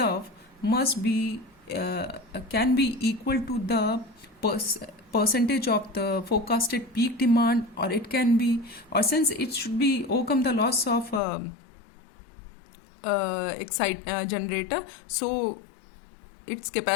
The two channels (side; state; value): right; drops out; at 11.2 s